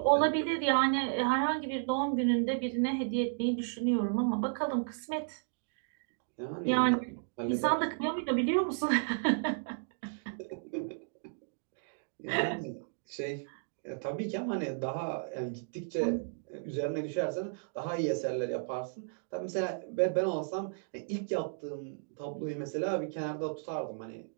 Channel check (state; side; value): silent; left; digital silence